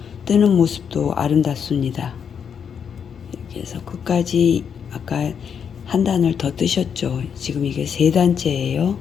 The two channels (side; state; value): right; quieter; 7.3 dB